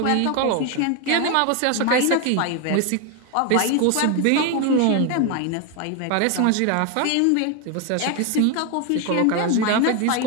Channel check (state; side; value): different; both; correlation 0.01